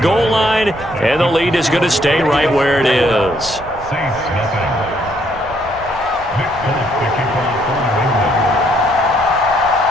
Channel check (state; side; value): noise; right; rumble, 18 dB below the sound